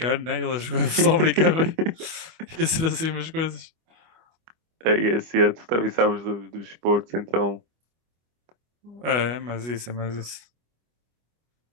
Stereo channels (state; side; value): late; left; 25 ms